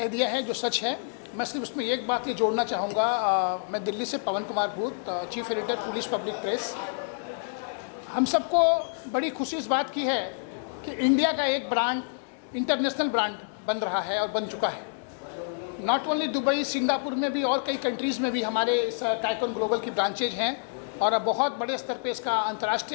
दिया है जो सच है। मैं सिर्फ उसमें एक बात ये जोड़ना चाहूँगा। मैं दिल्ली से पवन कुमार भूत, chief editor police public press. हम सबको बड़ी खुशी इस बात की है कि इंडिया का एक ब्रांड इंटरनेशनल ब्रांड बन रहा है और बन चुका है। नॉट ओनली दुबई, सिंगापुर में भी और कई कंट्रीज़ में भी हमारे इस टाइकून ग्लोबल की ब्रांचेज हैं, और अब बहुत बड़े स्तर पे इसका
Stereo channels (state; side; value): silent; right; digital silence